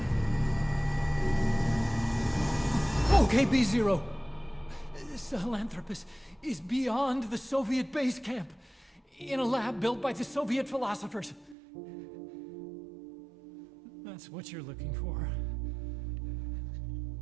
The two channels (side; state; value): left; drops out; at 11.6 s